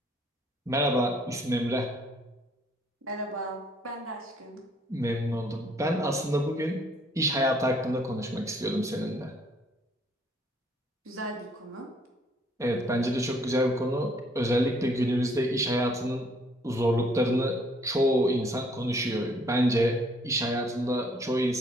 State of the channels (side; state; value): both; normal; correlation 0.64